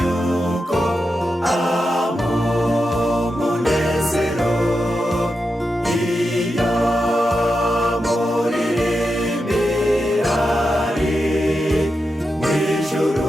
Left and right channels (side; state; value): both; normal; correlation 0.88